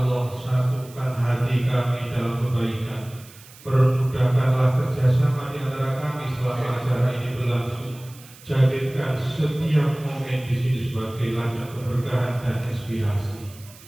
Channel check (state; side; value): noise; right; hiss, 22 dB below the sound